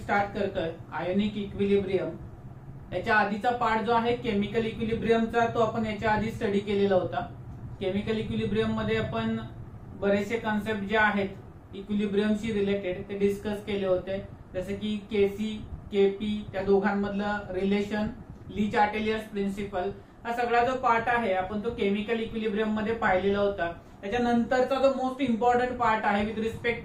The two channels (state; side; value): identical; both; correlation 1.00